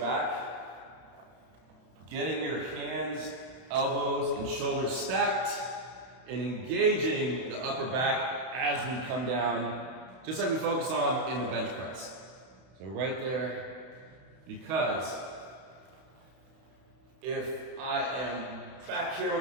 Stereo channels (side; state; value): left; late; 32 ms